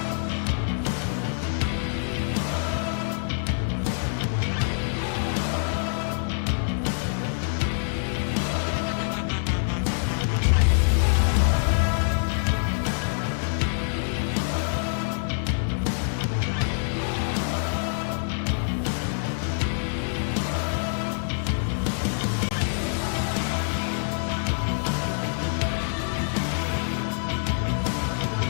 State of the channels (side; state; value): right; silent; digital silence